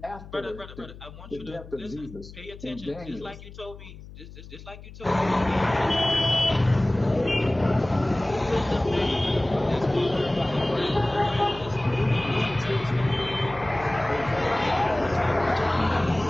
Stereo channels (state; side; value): noise; left; hum, 16 dB below the sound